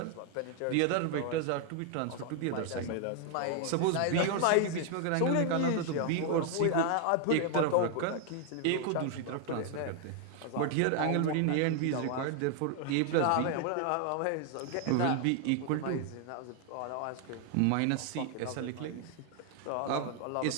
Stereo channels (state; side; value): different; both; correlation 0.00